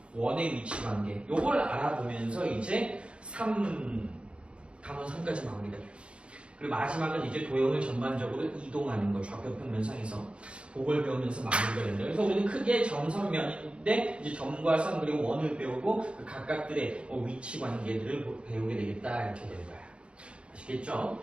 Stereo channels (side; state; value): left; late; 0.058 ms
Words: 원의 위치 관계 요걸 알아보면서 이제 단원 3까지 마무리가 돼요. 그리고 마지막은 이제 도형을 전반적으로 이동하는 거 좌표 평면상에서 그걸 배우면서 마무리가 된다. 그래서 우리는 크게 점선면인데 이제 점과 선 그리고 원을 배우고 그 각각들의 위치 관계들을 배우게 되겠다 이렇게 될 거야. 아시겠죠?